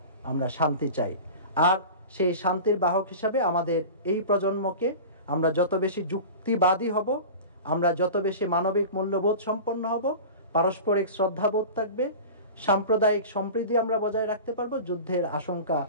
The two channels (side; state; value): both; inverted; correlation -0.33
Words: আমরা শান্তি চাই। আর সেই শান্তির বাহক হিসাবে আমাদের এই প্রজন্মকে আমরা যত বেশি যুক্তিবাদী হব, আমরা যত বেশি মানবিক মূল্যবোধ সম্পন্ন হব, পারস্পরিক শ্রদ্ধাবোধ থাকবে, সাম্প্রদায়িক সম্প্রীতি আমরা বজায় রাখতে পারবো, যুদ্ধের আশঙ্কা